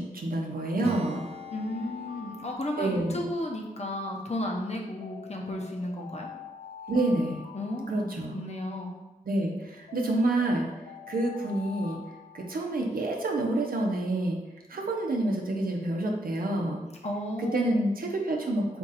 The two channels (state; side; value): normal; both; correlation 0.74